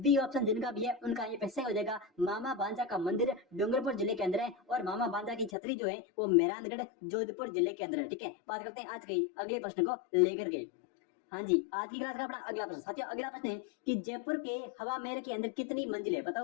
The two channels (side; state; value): right; drops out; at 5.5 s